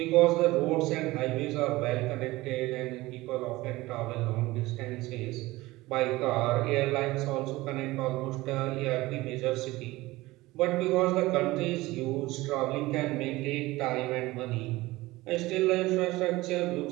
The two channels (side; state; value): left; quieter; 19.4 dB